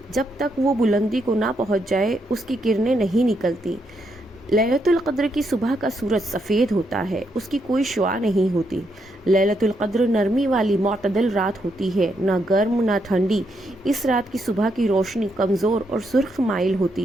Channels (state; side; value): normal; both; correlation 0.78